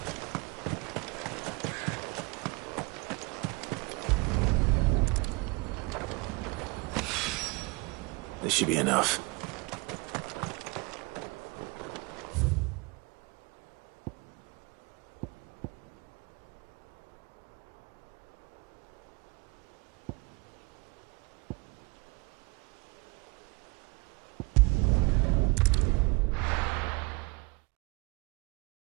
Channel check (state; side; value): quieter; left; 27.4 dB